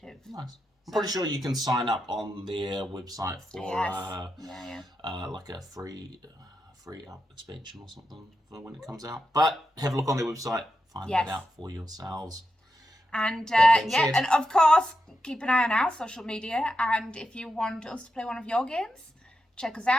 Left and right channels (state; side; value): normal; both; correlation 0.87